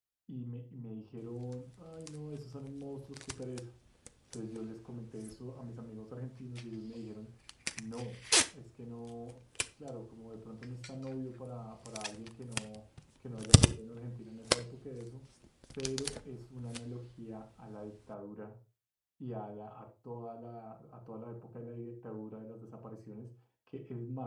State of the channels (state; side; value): identical; both; correlation 1.00